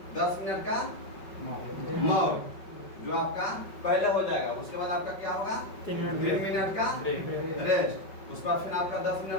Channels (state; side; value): late; right; 5.3 ms